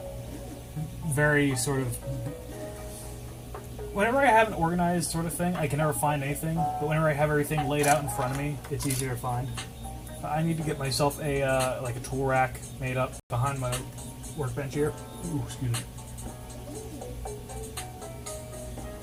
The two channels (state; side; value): identical; both; correlation 1.00